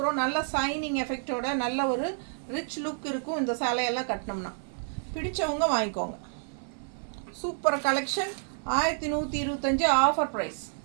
நல்ல சைனிங் எஃபெக்டோட நல்ல ஒரு ரிச் லுக் இருக்கும் இந்த சேலையெல்லாம் கட்டினோம்னா. பிடிச்சவங்க வாங்கிக்கோங்க. Super collection 1125 offer price.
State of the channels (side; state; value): left; silent; 58 dB below the other